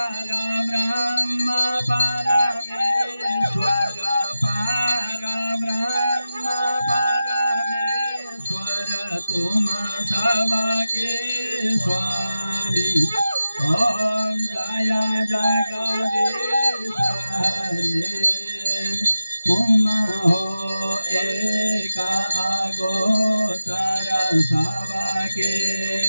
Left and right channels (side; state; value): both; inverted; correlation -0.93